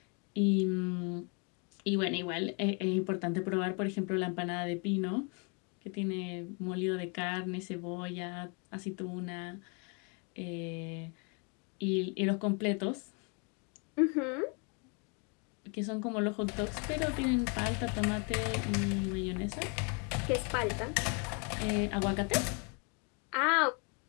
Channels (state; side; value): quieter; right; 35.0 dB